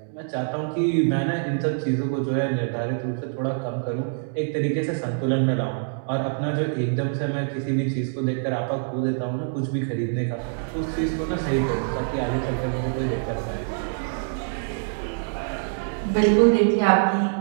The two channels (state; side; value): silent; left; digital silence